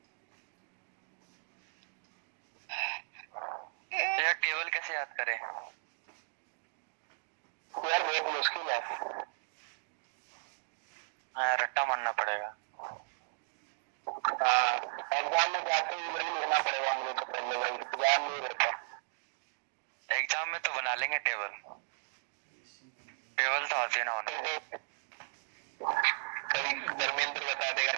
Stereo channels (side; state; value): left; silent; digital silence